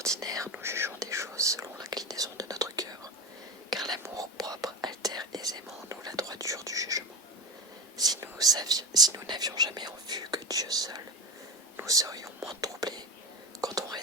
nous jugeons des choses selon l'inclinaison de notre cœur, car l'amour propre altère aisément en nous la droiture du jugement. Si nous n'avions jamais en vue que Dieu seul, nous serions moins troublés quand on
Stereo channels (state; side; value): normal; both; correlation 0.23